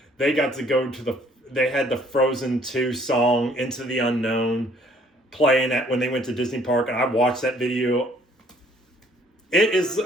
they got to go they had the Frozen 2 song, Into the Unknown, playing when they went to Disney Park, and I watched that video. It is,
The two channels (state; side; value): normal; both; correlation 0.60